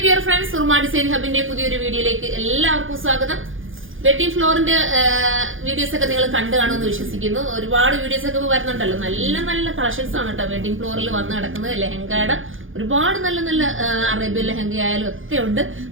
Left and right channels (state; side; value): late; left; 0.58 ms